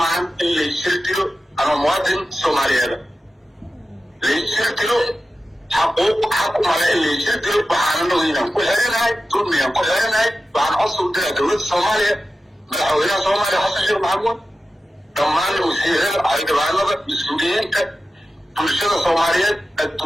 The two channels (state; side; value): normal; both; correlation 0.93